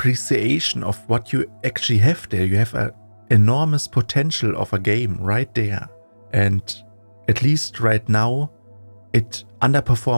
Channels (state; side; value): inverted; both; correlation -1.00